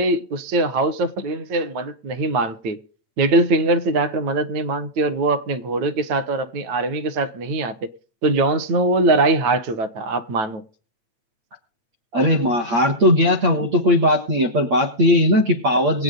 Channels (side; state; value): left; late; 9.2 ms